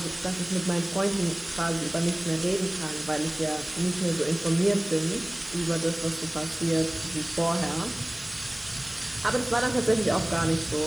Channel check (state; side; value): noise; right; hiss, 20 dB below the sound